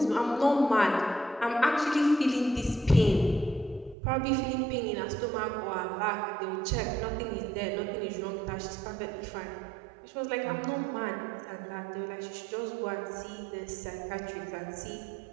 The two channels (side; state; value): left; drops out; at 4.0 s